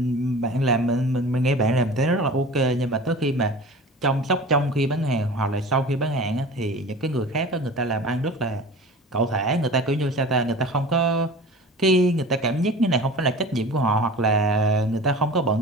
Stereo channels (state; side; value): normal; both; correlation 0.38